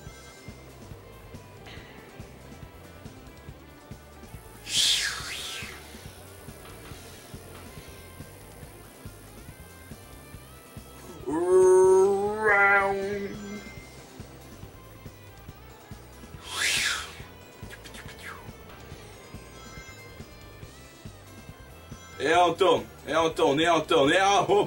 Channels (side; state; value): both; identical; correlation 1.00